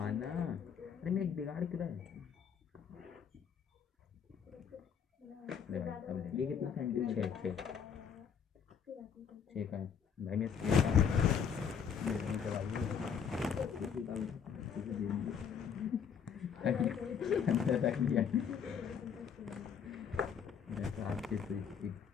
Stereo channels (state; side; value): quieter; right; 7.2 dB